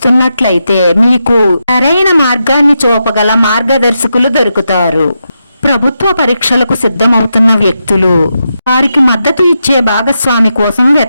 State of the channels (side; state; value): both; inverted; correlation -0.86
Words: మీకు సరైన మార్గాన్ని చూపగల మార్గదర్శకులు దొరుకుతారు. ప్రభుత్వ పరీక్షలకు సిద్ధమవుతున్న వ్యక్తులు వారికి మద్దతు ఇచ్చే భాగస్వామి కోసం